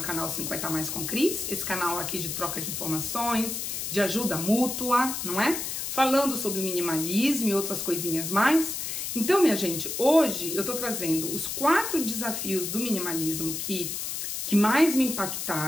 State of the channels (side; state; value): left; noise; hiss, 4 dB below the sound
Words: canal 50 Mais com Cris, esse canal aqui de troca de informações, de ajuda mútua, não é? Falando sobre o minimalismo e outras coisinhas mais. Então, minha gente, hoje eu tô trazendo os 4 desafios do minimalismo que mais me